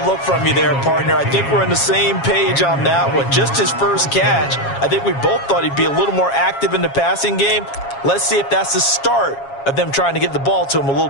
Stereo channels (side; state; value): right; late; 7.3 ms